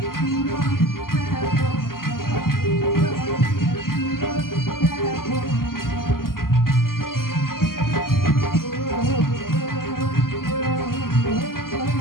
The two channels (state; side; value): late; right; 0.92 ms